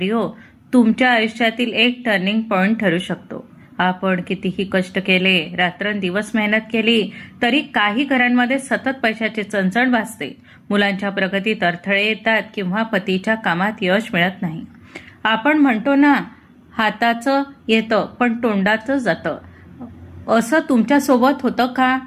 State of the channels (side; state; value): both; identical; correlation 1.00